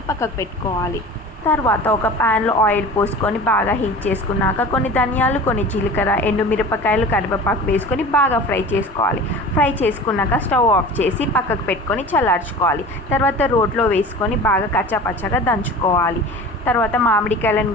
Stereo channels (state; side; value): normal; both; correlation 0.38